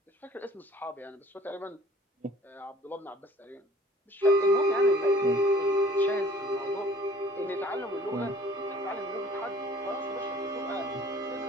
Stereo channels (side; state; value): both; normal; correlation 0.52